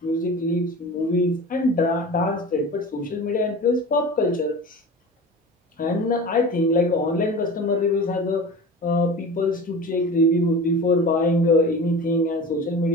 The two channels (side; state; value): both; normal; correlation 0.34